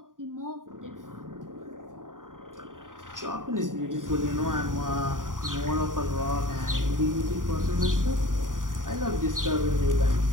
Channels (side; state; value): left; late; 0.89 ms